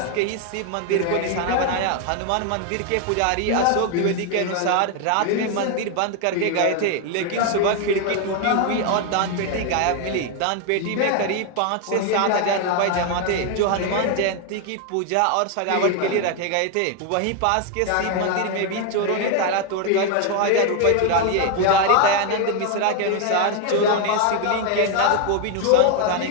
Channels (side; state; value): both; different; correlation 0.01